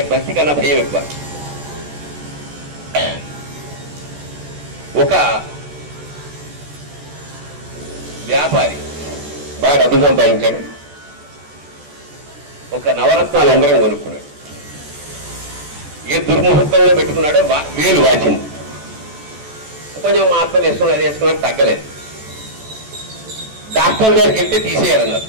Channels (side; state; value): left; late; 14 ms